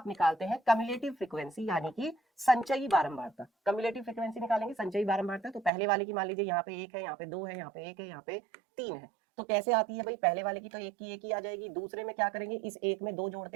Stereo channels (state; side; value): drops out; left; at 5.7 s